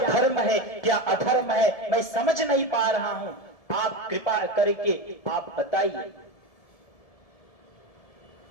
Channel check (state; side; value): late; right; 1.7 ms